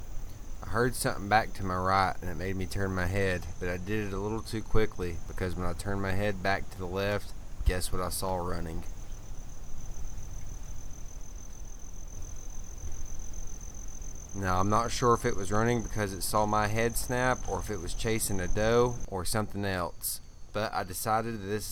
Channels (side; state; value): both; identical; correlation 1.00